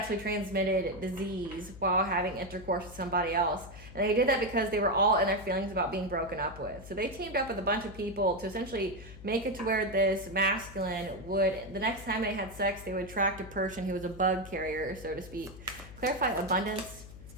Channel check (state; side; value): noise; left; hum, 16 dB below the sound